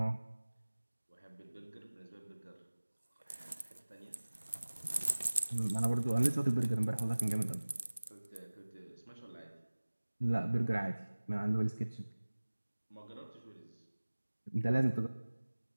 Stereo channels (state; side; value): inverted; both; correlation -1.00